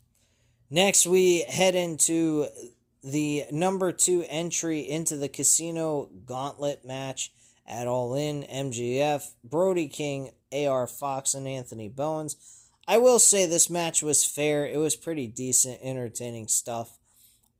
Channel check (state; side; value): identical; both; correlation 1.00